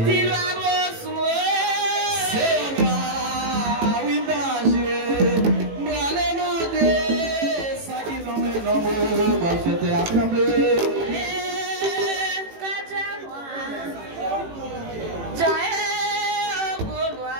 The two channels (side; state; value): left; late; 18 ms